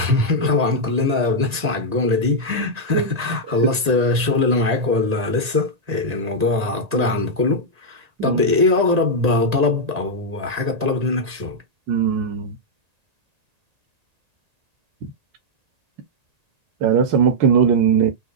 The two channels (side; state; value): left; late; 1.8 ms